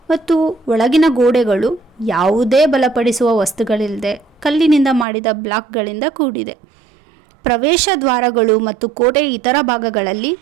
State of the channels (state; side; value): drops out; left; at 5.1 s